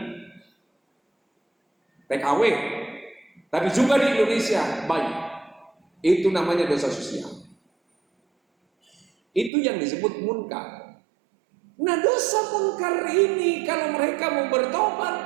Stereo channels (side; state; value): left; drops out; at 9.5 s